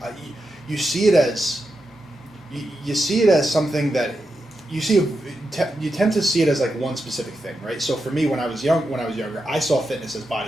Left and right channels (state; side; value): normal; both; correlation 0.87